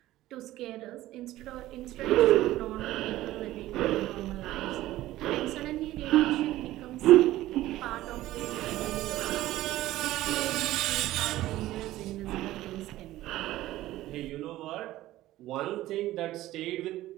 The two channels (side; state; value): left; quieter; 15.6 dB